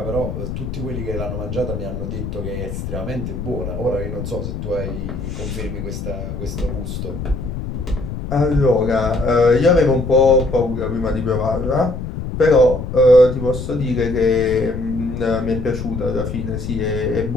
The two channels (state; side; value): noise; left; rumble, 6 dB below the sound